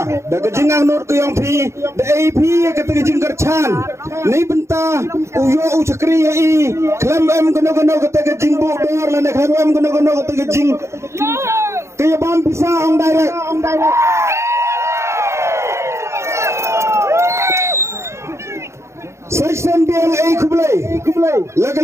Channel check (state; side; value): late; left; 0.13 ms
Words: da kejingang not ke yang pi da AP kata kejing kercan ni benta uyo cekri i klam em gono kata kejing bu dor lane klam em gono kata kejing kaya bam bisa on direct Section BLA kublai